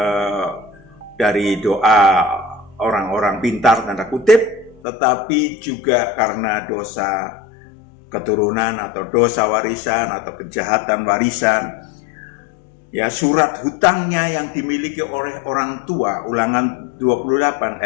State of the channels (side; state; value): right; drops out; at 4.8 s